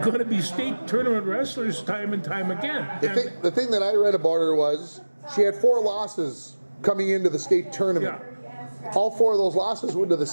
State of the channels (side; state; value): both; inverted; correlation -1.00